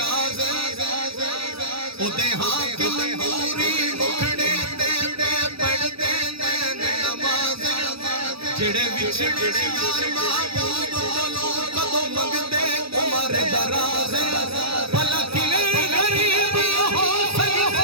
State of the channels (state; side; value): late; left; 0.77 ms